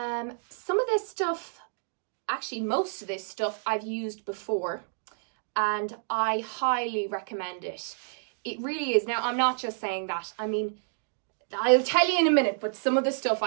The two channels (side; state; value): left; silent; digital silence